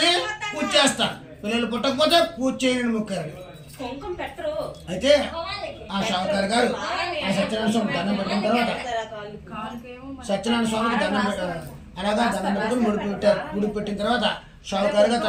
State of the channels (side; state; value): both; identical; correlation 1.00